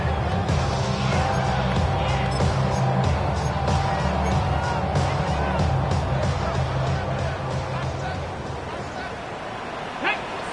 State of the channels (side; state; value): both; identical; correlation 1.00